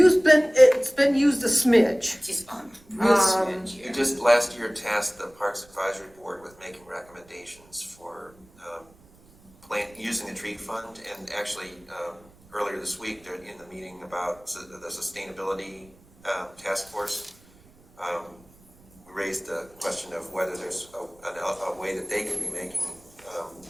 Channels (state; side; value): noise; right; rumble, 27 dB below the sound